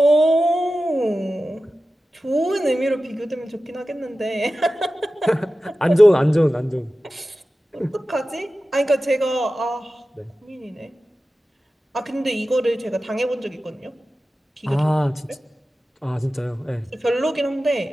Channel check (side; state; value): both; normal; correlation 0.94